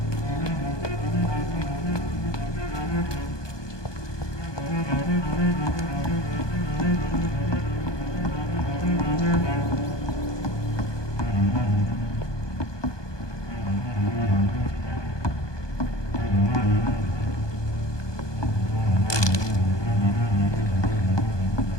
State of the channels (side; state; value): right; late; 1.2 ms